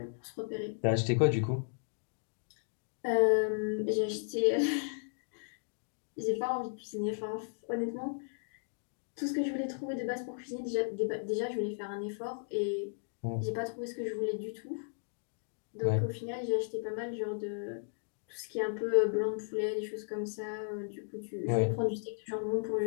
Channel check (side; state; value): right; silent; digital silence